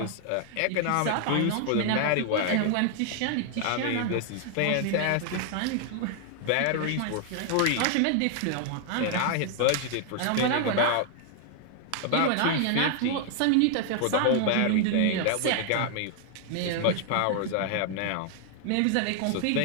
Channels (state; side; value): different; both; correlation 0.00